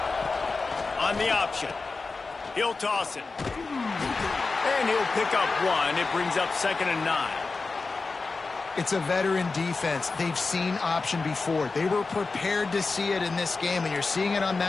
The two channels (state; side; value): quieter; right; 4.0 dB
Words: On the option, he'll toss it. And he'll pick up 1. It brings up 2nd and 9. It's a veteran defense. They've seen option before. They were prepared to see it in this game, and you're seeing it on